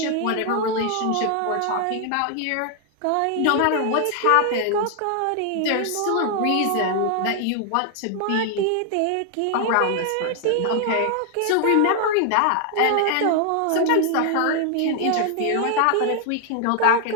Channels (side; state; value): both; different; correlation 0.00